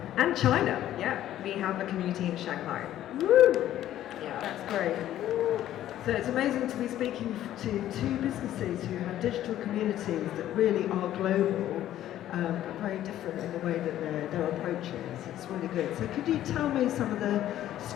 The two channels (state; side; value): quieter; right; 12.5 dB